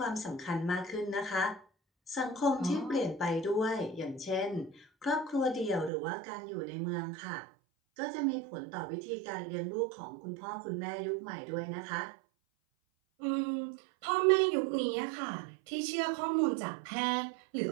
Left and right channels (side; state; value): left; drops out; at 5.9 s